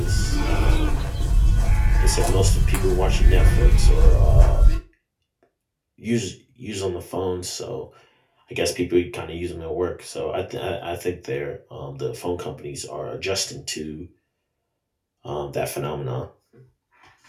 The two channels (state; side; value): identical; both; correlation 1.00